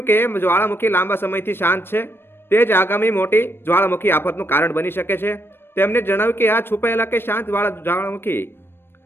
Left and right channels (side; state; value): right; late; 0.11 ms